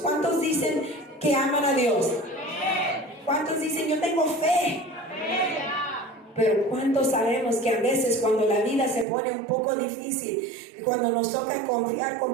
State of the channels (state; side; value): drops out; left; at 9.1 s